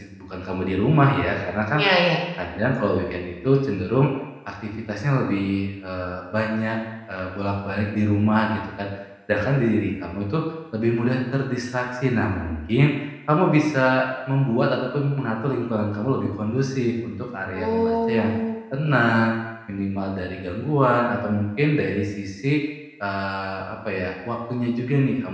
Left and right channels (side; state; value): both; identical; correlation 1.00